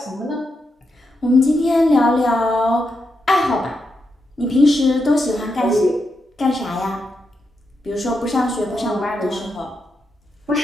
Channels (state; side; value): normal; both; correlation 0.84